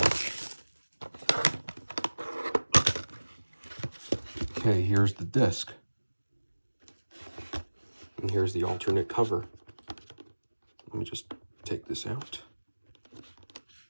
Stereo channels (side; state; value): both; inverted; correlation -1.00